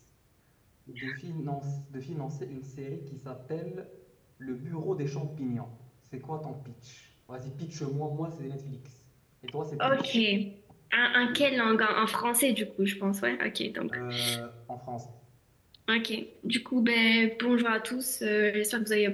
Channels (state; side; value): identical; both; correlation 1.00